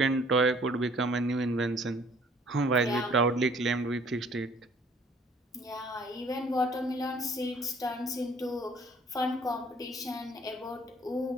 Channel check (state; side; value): normal; both; correlation 0.57